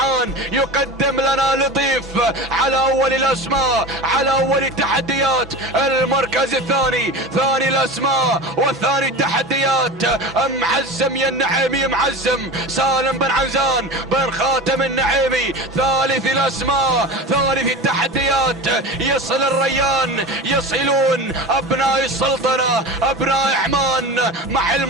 يقدم لنا لطيف على اول الاسماء على اول التحديات. المركز الثاني ثاني الاسماء والثاني التحديات معزم يا النعيمي معزم سالم بن عنزان بن خاتم النعيمي ثالث الاسماء ثالث التحديات يصل الريان يصلون ابناء السلطنة ابناء عمان مع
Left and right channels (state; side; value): normal; both; correlation 0.30